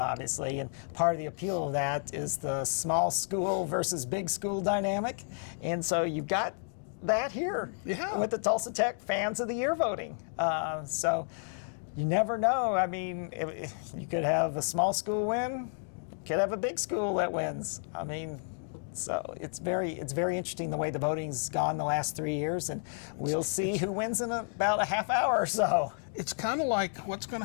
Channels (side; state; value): right; silent; digital silence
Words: obviously, and part of the appeal of that is the small school versus big school dynamic, and so you've got that here with the Tulsa Tech Fans of the Year voting. So you never know. I mean, you could have a small school win, you could have a big school that wins. I mean, so it's very interesting the way the voting's gone the last 3 years, and we'll see who wins in about a half hour or so. It's kind of like what's going